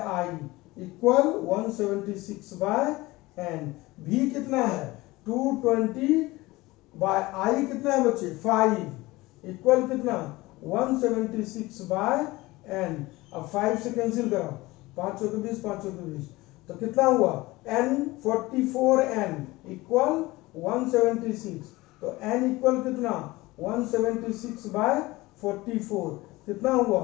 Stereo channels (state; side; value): quieter; right; 20.3 dB